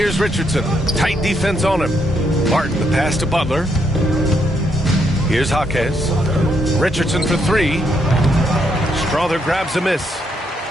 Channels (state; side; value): normal; both; correlation 0.76